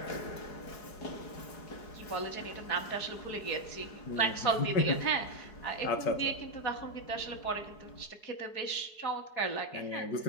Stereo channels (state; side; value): late; right; 4.7 ms